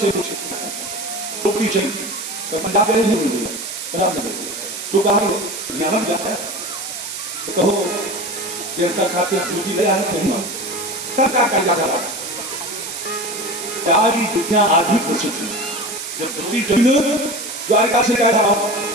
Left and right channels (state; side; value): noise; right; hiss, 7 dB below the sound